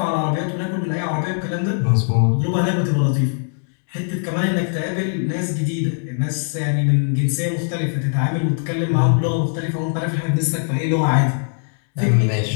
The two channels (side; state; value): right; silent; 57 dB below the other